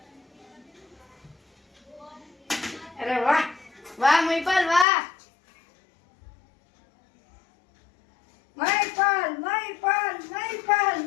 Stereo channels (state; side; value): drops out; right; at 4.9 s